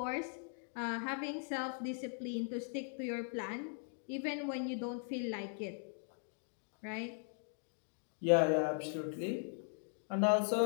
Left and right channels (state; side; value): silent; right; 51 dB below the other